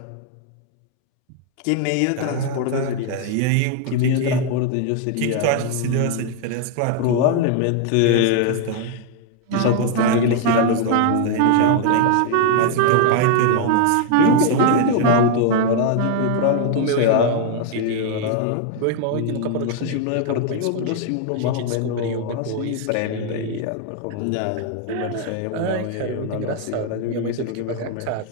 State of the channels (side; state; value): both; different; correlation 0.00